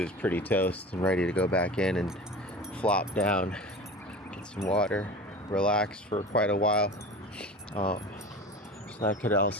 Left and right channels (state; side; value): normal; both; correlation 0.35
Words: pretty toast and ready to go back in and flop down, get some water, relax for quite a while. So that could